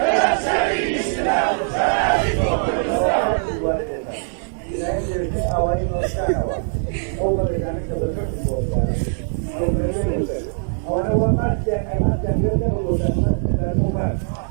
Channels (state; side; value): silent; left; digital silence